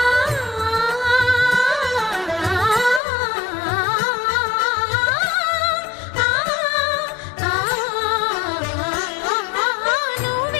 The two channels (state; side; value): drops out; right; at 3.0 s